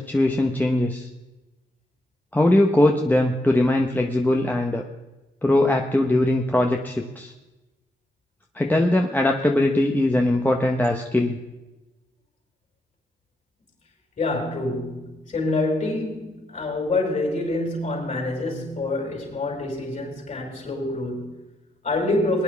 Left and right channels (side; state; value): both; normal; correlation 0.82